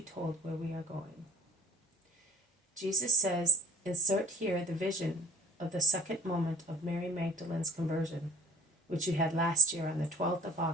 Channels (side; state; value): both; normal; correlation 0.49